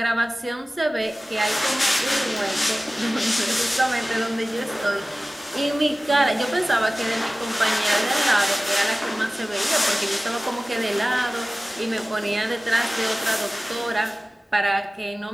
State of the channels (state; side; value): normal; both; correlation 0.97